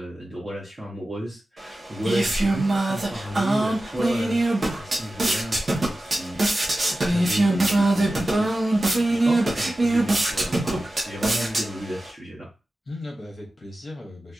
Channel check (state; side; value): normal; both; correlation 0.94